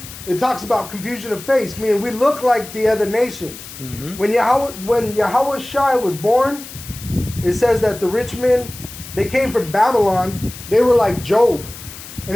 it talks about confusion of face, meaning we look like the other nations. Mhm. When Yahweh Shai was born, it says that the rich men, they came from Babylon, they were like Job. And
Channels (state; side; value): noise; left; hiss, 14 dB below the sound